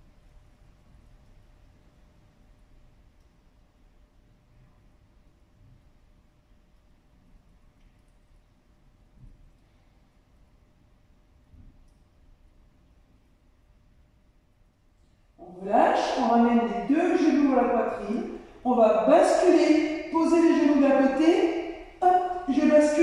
On relâche, on ramène les deux genoux à la poitrine. On va basculer, poser les genoux d'un côté. Hop, je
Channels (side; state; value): both; identical; correlation 1.00